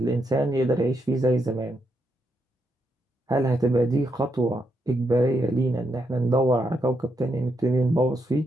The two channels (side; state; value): both; normal; correlation 0.80